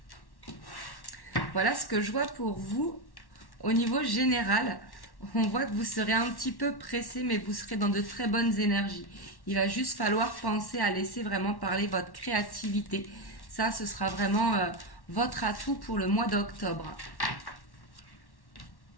Voilà ce que je vois pour vous au niveau général. On voit que vous serez un petit peu pressé, mais vous serez dans de très bonnes énergies. Il va juste falloir penser à laisser vraiment parler votre créativité. Ça, ce sera vraiment votre atout pour le mois d'octobre.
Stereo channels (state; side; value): late; right; 1.1 ms